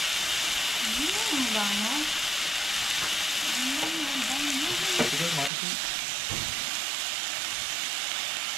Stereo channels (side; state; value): left; drops out; at 5.5 s